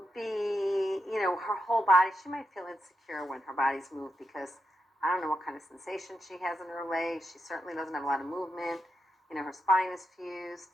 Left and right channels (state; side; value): normal; both; correlation 0.85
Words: be, her whole body, she might feel insecure when her body's moved because I don't know what kind of sensation she has in her legs. She certainly doesn't have a lot of movement. Her spine is fused.